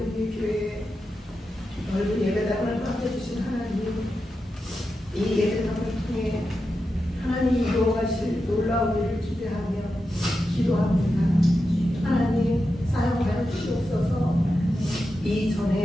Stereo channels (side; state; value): both; normal; correlation 0.89